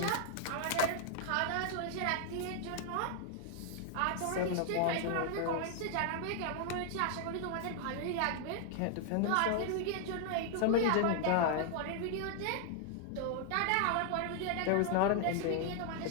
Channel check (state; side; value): different; both; correlation 0.00